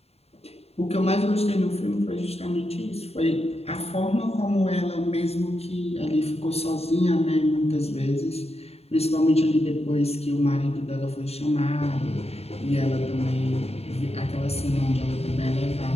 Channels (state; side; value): late; right; 0.30 ms